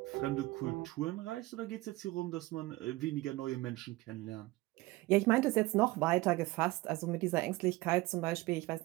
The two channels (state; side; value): quieter; left; 20.1 dB